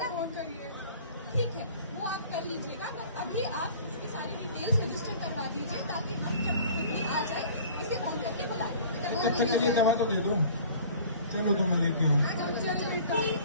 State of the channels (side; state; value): both; inverted; correlation -0.47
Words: फोन करिए। ठीक है, वो आप कर लीजिएगा। तो अभी आप इसकी सारी डिटेल्स रजिस्टर करवा दीजिए, ताकि हम जब पुतली आ जाए इसे फोन करके बुला लें। अच्छा चलिए, दवा तो दे दो। चलो तो मैं लेके आऊँ। चल बेटा